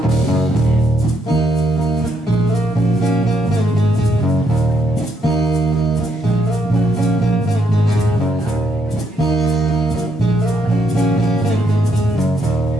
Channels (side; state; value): both; normal; correlation 0.74